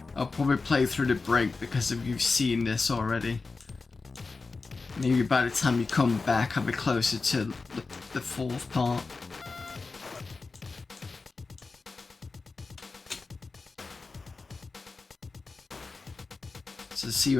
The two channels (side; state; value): right; quieter; 4.1 dB